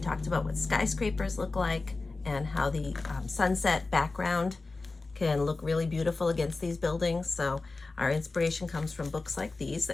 about what skyscrapers look like and how the sunset background can look really beautiful against these buildings. So our inspiration comes from books like these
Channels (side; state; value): right; quieter; 3.6 dB